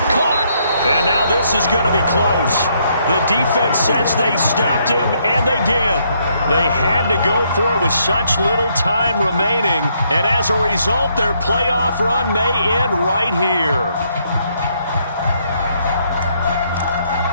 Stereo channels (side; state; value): both; inverted; correlation -0.72